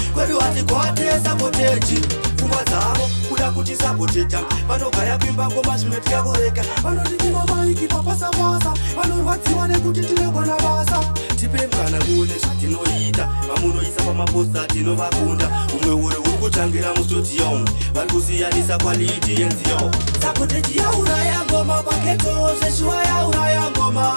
kwedu hati kwate sapotechi. Pfungwa dzavo kuda kuti sapoteta, vanogaya kwimba ngoma zvimwe tikakoreka. Vanotitima maiki papasa-pasa, vanorwadziwa nekuti tinogona basa. Tipe mukana muone zvatinoita, vamunoisa pamaposta tinovakunda. Umwe uri kutangira mustudio, vari kusiyanisa quality yenziyo. Sapotechi ya uraya ngoma paketo, seshua ya uraya ngoma.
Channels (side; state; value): both; inverted; correlation -1.00